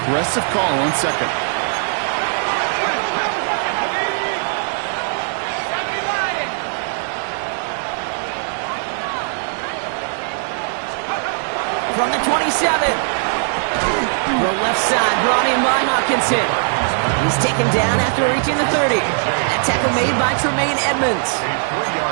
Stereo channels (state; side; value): silent; left; digital silence